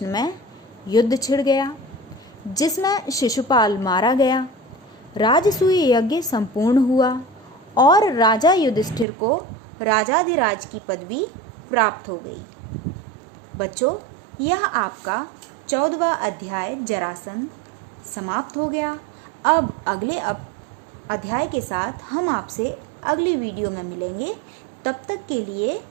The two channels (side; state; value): left; drops out; at 9.1 s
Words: में युद्ध छिड़ गया, जिसमें शिशुपाल मारा गया। राजसूय यज्ञ संपूर्ण हुआ और राजा युधिष्ठिर को राजाधिराज की पदवी प्राप्त हो गई। बच्चों, यह आपका 14वां अध्याय जरासंध समाप्त हो गया। अब अगले अध्याय के साथ हम आपसे अगली वीडियो में मिलेंगे। तब तक के लिए